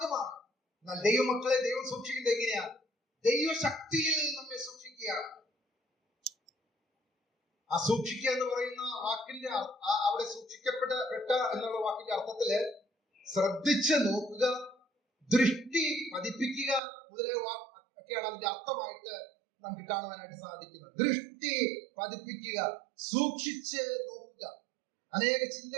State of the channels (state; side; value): drops out; left; at 16.8 s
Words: എന്നാൽ ദൈവമക്കളെ ദൈവം സൂക്ഷിക്കുന്നത് എങ്ങനെയാണ്? ദൈവശക്തിയിൽ നമ്മെ സൂക്ഷിക്കുകയാണ്. ആ സൂക്ഷിക്കുക എന്ന് പറയുന്ന വാക്കിന്റെ അവിടെ സൂക്ഷിക്കപ്പെട്ട എന്നുള്ള വാക്കിന്റെ അർത്ഥത്തില് ശ്രദ്ധിച്ച് നോക്കുക, ദൃഷ്ടി പതിപ്പിക്കുക മുതലായ ഒക്കെയാണ് അതിന്റെ അർത്ഥമായിട്ട് നമുക്ക് കാണുവാനായിട്ട് സാധിക്കുന്നത്. ദൃഷ്ടി പതിപ്പിക്കുക, സൂക്ഷിച്ച് നോക്കുക. അനേക